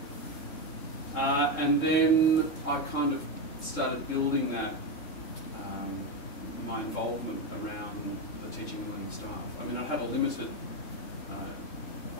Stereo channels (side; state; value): right; late; 3.7 ms